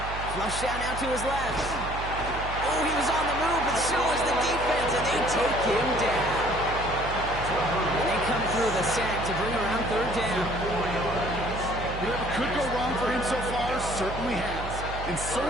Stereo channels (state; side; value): noise; right; hum, 8 dB below the sound